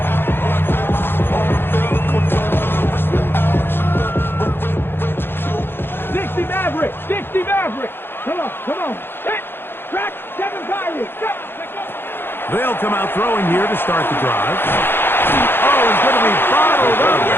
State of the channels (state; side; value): late; right; 0.10 ms